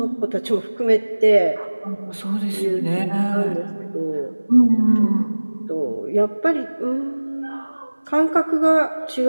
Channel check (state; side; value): inverted; both; correlation -1.00